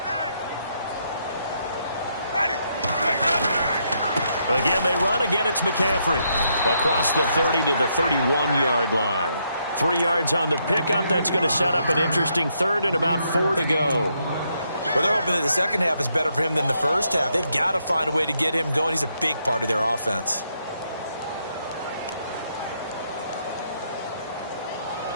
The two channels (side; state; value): both; inverted; correlation -0.76